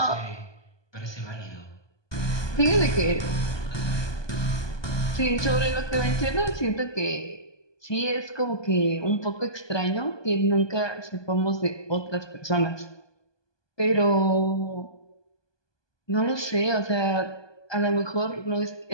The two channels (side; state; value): right; late; 1.2 ms